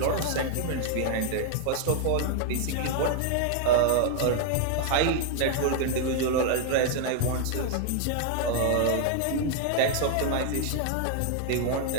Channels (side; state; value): both; different; correlation 0.00